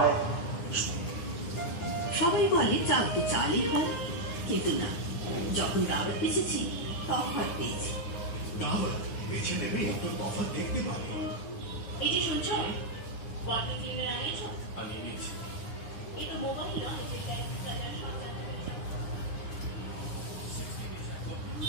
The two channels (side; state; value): right; late; 9.7 ms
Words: সবাই বলে চাল তো চালই হয়, কিন্তু না, যখন দাওয়াত পেয়েছি তফাৎ পেয়েছি। দাওয়াত বেছে নেবে তো তফাৎ দেখতে পাবে। এই যে শুনছো, ওয়াটার ক্লিনার আনিয়েছো? আমি নিচ্ছি। এই তো মোবাইল